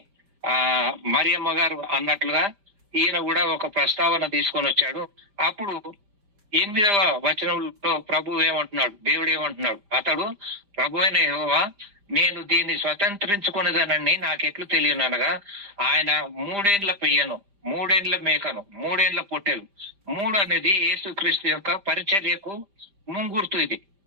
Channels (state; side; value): late; left; 5.0 ms